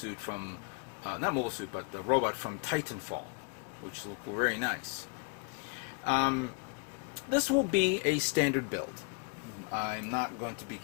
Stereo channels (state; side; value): quieter; right; 35.9 dB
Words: from not mobile suit, but the robot from Titanfall, which looked very nice. This will be a standard build. I'm not going to